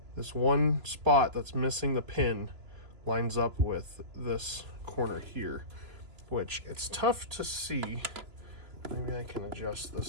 one spot that's missing the pin lines up with this corner here, which it's tough to see. Maybe I can adjust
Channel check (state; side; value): late; left; 3.0 ms